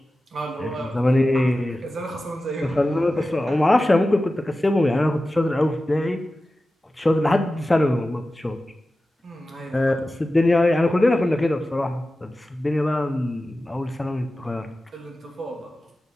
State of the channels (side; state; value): both; normal; correlation 0.94